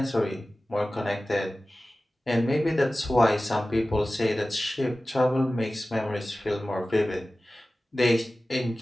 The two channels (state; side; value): normal; both; correlation 0.96